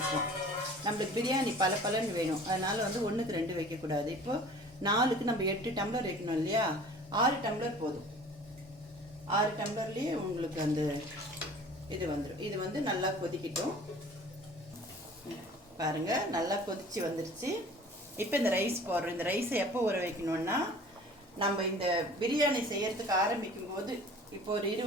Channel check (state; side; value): normal; both; correlation 0.46